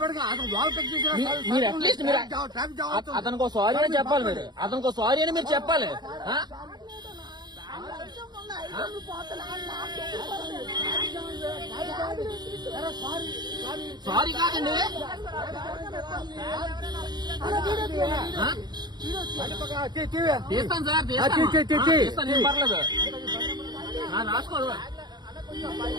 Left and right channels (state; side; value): late; left; 0.20 ms